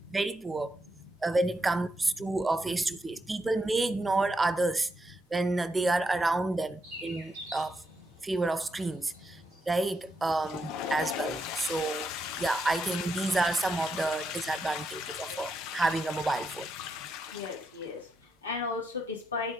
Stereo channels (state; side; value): normal; both; correlation 0.82